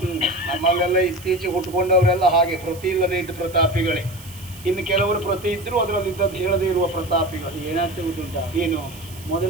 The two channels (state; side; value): noise; right; hiss, 19 dB below the sound